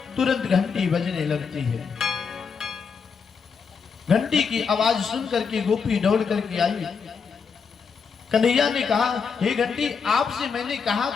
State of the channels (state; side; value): quieter; right; 5.8 dB